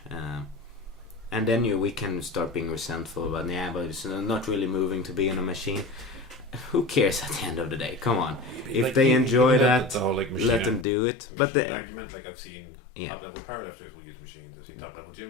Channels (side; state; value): right; drops out; at 10.9 s